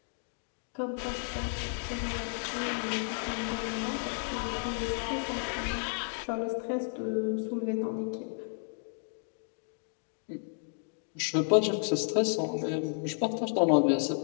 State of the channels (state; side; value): silent; right; 56 dB below the other